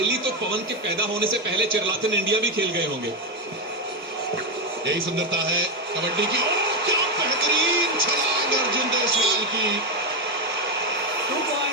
तो पवन के पैदा होने से पहले चिरलाथन इंडिया भी खेल गए होंगे। यही सुंदरता है कबड्डी की। क्या बेहतरीन छलांग अर्जुन देसवाल की। 2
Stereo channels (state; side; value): normal; both; correlation 0.09